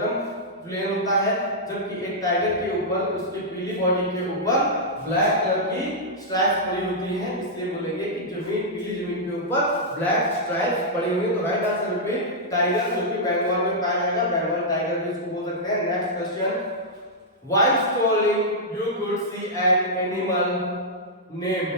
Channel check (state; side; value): normal; both; correlation -0.09